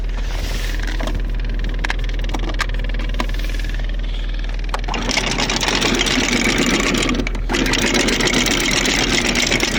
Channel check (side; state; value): both; identical; correlation 1.00